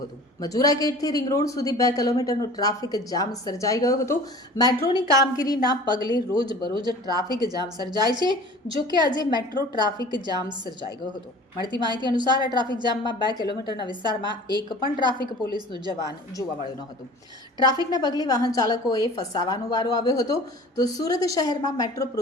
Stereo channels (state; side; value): normal; both; correlation 0.43